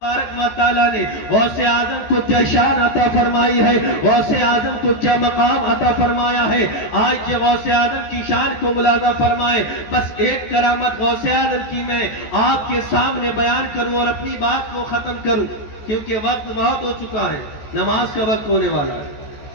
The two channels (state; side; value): late; right; 14 ms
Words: تبارک و تعالیٰ نے غوث اعظم کو کیا شان عطا فرمائی ہے، غوث اعظم کو کیا مقام عطا فرمایا ہے۔ آج یہ غوث اعظم کی شان کو ملاحظہ فرمائے۔ بس ایک کرامت غوث اعظم کی میں آپ کے سامنے بیان کروں اور اپنی بات کو ختم کروں، کیونکہ وقت بہت ہو چکا ہے، نماز کا وقت ہونے والا ہے۔